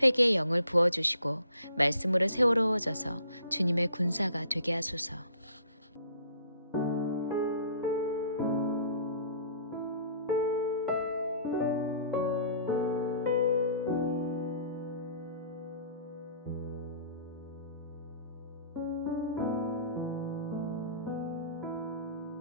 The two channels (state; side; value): inverted; both; correlation -0.54